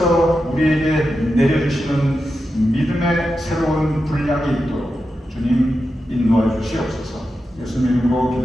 우리에게 내려주시는 믿음의 새로운 분량이 있도록 주님 인도하여 주시옵소서. 예수님 이름으로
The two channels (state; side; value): normal; both; correlation 0.89